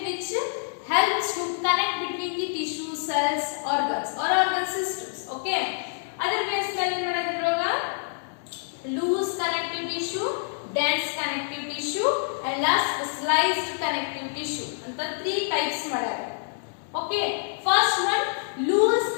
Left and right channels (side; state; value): right; silent; digital silence